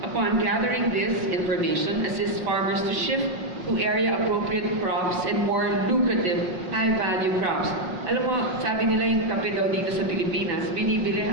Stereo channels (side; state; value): left; late; 5.5 ms